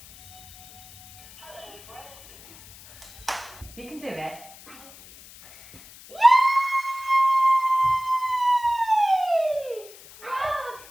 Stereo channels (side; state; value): left; noise; hiss, 20 dB below the sound